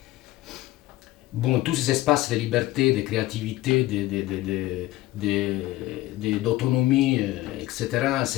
Bon, tous ces espaces de liberté, de créativité, d'autonomie, etc.,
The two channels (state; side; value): quieter; right; 17.1 dB